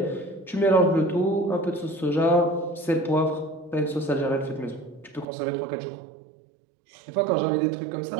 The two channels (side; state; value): left; drops out; at 5.2 s